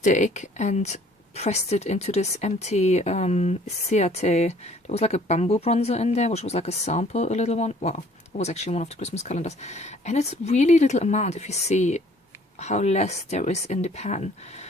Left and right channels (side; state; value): both; normal; correlation 0.57